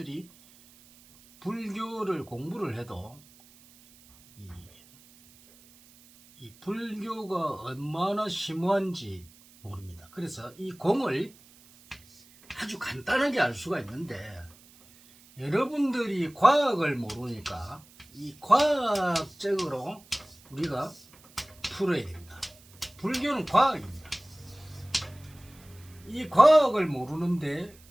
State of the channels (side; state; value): right; noise; hiss, 25 dB below the sound